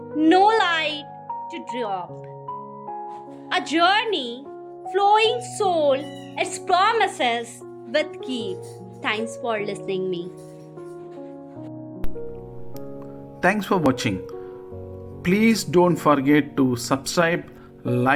no light to drop. A journey, flowing soul, its promises with keep. Thanks for listening me. Thanks for watching. Please don't forget to subscribe,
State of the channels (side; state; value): both; identical; correlation 1.00